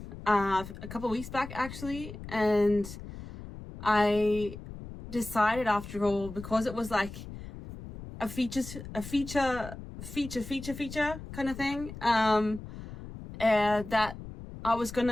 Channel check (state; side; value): noise; left; rumble, 12 dB below the sound